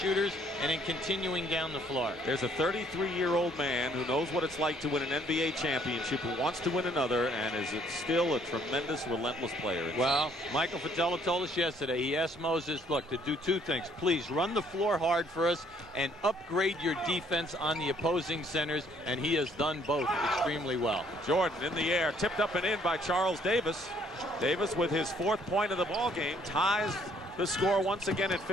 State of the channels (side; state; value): both; normal; correlation 0.63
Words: and then continuing down the floor. There's a 33-year-old man who knows what it's like to win an NBA championship, who wants to win another, and is still a tremendous, relentless player. Well, Michael Fratello told us yesterday, he asked Moses, look, to do two things. Please run the floor hard for us and upgrade your defense on the opposing centers, and he has done both extremely well. Jordan in the air, tipped up and in by Charles Davis. Davis, with his 4th point of the ball game, ties the score once again at